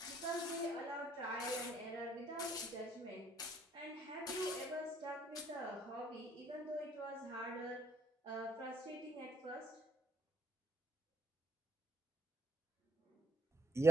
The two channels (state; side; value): normal; both; correlation 0.69